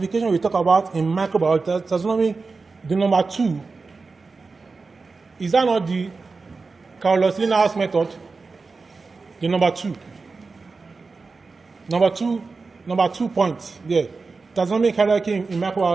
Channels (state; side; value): quieter; left; 4.2 dB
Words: we talk about in microbial taxonomy, the number 2, is that not the Carlos Linnaeus method? The number 2. Number 2 points there. Taxonomic hierarchy in